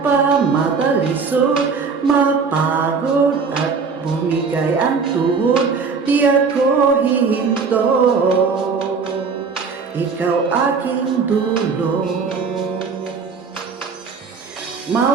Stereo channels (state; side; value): quieter; left; 5.2 dB